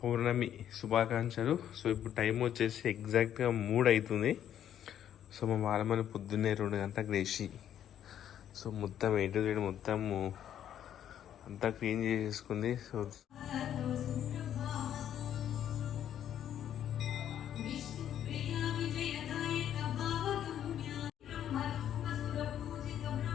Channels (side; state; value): right; quieter; 10.3 dB